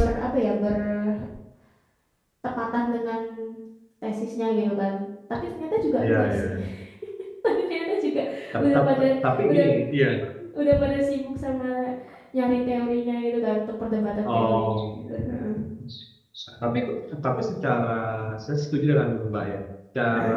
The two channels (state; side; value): identical; both; correlation 1.00